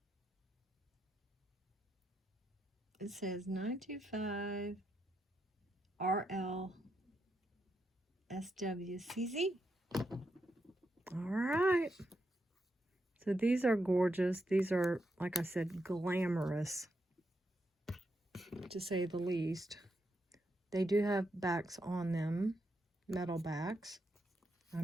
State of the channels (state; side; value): normal; both; correlation 0.83